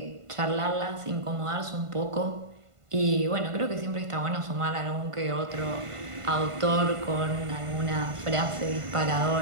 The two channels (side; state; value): left; late; 1.5 ms